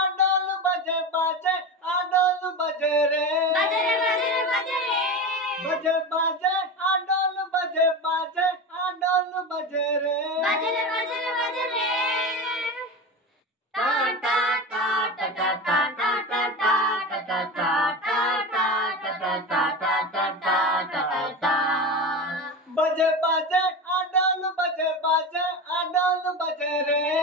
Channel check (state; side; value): normal; both; correlation 0.24